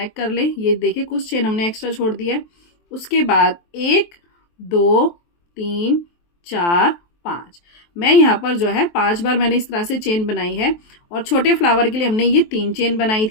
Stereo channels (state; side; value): late; right; 23 ms